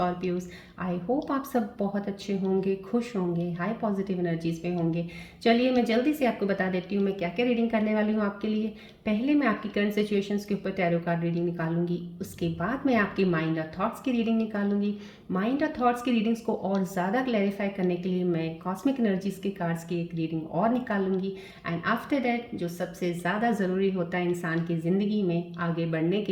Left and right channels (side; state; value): both; identical; correlation 1.00